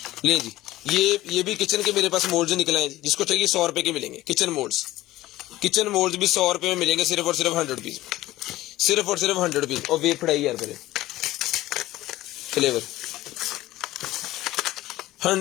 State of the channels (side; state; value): right; quieter; 16.3 dB